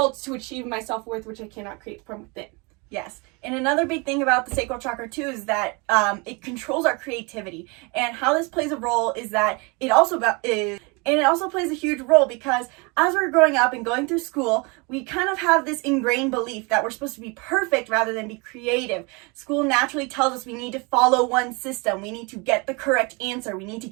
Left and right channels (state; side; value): quieter; left; 29.2 dB